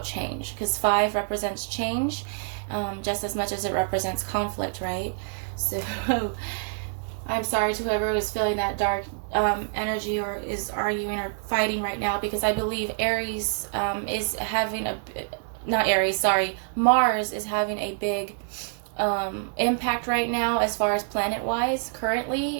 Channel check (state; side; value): silent; left; digital silence